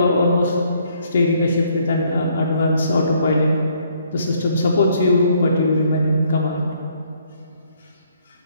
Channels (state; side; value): inverted; both; correlation -0.67